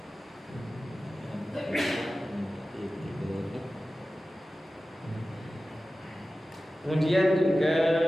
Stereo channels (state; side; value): normal; both; correlation 0.95